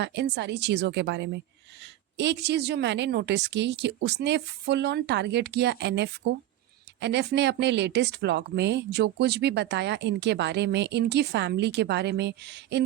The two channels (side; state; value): left; quieter; 13.8 dB